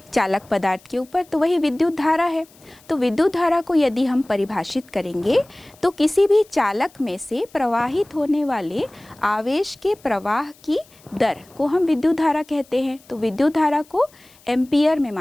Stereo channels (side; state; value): left; noise; hiss, 28 dB below the sound